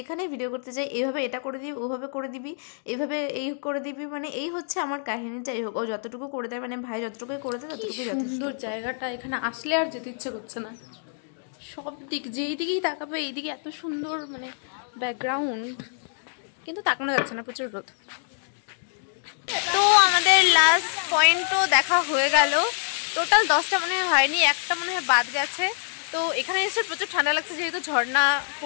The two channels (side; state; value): right; silent; digital silence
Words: ভিডিও করতে যাই এইভাবে এটা করে দিবি, ওভাবে করে দিবি, এইভাবে এই করে দিবি, মানে এই হচ্ছে আমার কাহিনী। যাই হোক, ও যতটুকু করে দেয়, মানে ভাই যতটুকুই করে দেয় ততটুকুই যথেষ্ট। সুন্দর জায়গাটা, এখানে আসলে আর যেতে ইচ্ছে করছে না। সব দিক যেই দিকেই তাকাবে এইদিকে এত সুন্দর মানে ব্যাকগ্রাউন্ড, কিন্তু তাকানো যাচ্ছে না, প্রচুর রোদ। তো আমাদের লাস্ট পয়েন্টও দেখা হয়ে গেল। টোটাল 10টা মনে হয়নি, একটা মনে হয় বাদ গেছে। তো এখানে এসে প্রচুর ঠান্ডা লাগছে যেহেতু ঝর্ণা